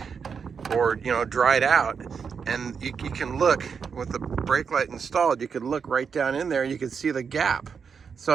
or, dried out. And you can look with the brake light installed, you could look right down in there and you can see the gap. So,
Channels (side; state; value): left; quieter; 6.2 dB